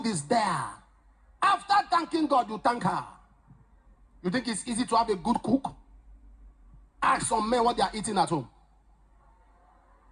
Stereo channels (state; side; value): identical; both; correlation 1.00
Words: is there. After thanking God, you thank her. You think it's easy to have a good cook? Ask some men what they are eating at home.